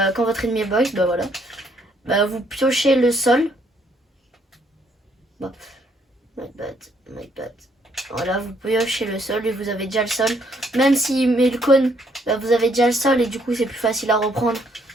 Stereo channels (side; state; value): both; normal; correlation 0.69